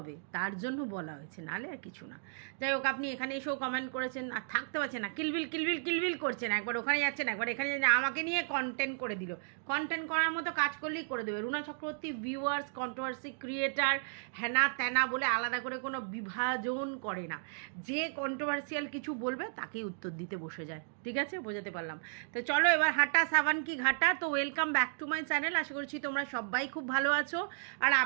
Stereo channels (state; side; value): silent; left; digital silence